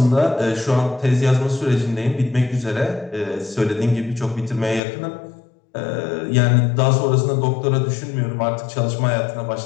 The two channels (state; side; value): drops out; right; at 4.8 s